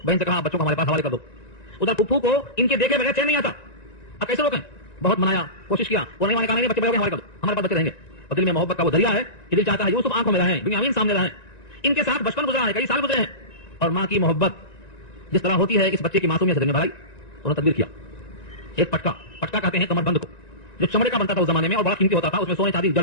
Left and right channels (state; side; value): late; right; 1.9 ms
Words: بہن سے کہا بچوں کو ہمارے پاس حوالے کر دو. ادھر پھپھو کو ان کے دیکھے بغیر چین نہیں آتا. اب کیسے روکیں؟ بہت منایا، کوشش کیا، وہ نہیں کہا نہیں بچے بڑے ہو گئے حوالے کر دو، ہمارے پاس بچے رہیں گے. اور دل میں محبت کا وہ دریا ہے کہ دل چاہتا ہے یوسف آنکھوں میں رہیں، بنیامین سامنے رہیں. ان کے ساتھ بچپن گزرا ہے، کئی سال گزرے ہیں اور ماں کی محبت جس طرح ہوتی ہے اس بچے کی معصومیت سے بھرائی انہوں نے تدبیر کیا. ایک پٹکا کہتے ہیں کمر بند کو, جو چمڑے کا بنتا تھا اس زمانے میں اور بڑا قیمتی ہوتا تھا, اس میں سونے چاندی